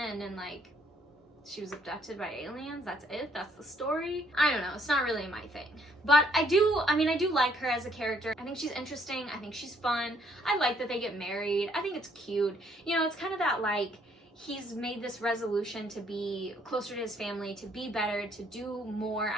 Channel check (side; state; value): both; normal; correlation 0.66